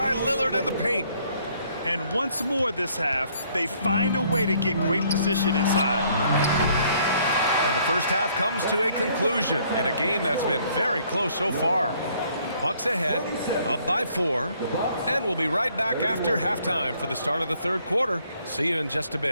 Lillard in the paint. And once more this half, they find a way to get great position inside. And the first half comes to a conclusion in a game that's been very close so far. Bucks ahead, up by 4, and we'll be right back after halftime for the start of the third quarter. See you in just a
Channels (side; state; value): both; inverted; correlation -0.64